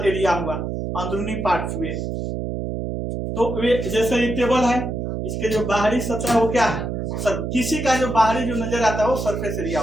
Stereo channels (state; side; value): noise; right; hum, 3 dB below the sound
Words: एरिया हुआ, अंदरूनी पार्ट हुए। तो वे जैसे ये टेबल है, इसके जो बाहरी सतह वो क्या है? किसी का जो बाहरी जो नजर आता है वो सरफेस एरिया